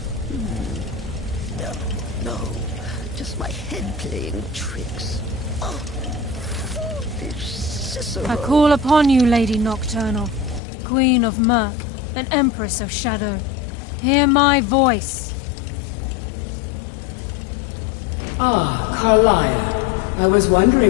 No. Just my head playing tricks. Oh, foolish Cicero. I call upon you, Lady Nocturnal, Queen of Murk, and Empress of Shadow. Hear my voice. Ah, Carlia. I was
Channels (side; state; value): right; drops out; at 10.6 s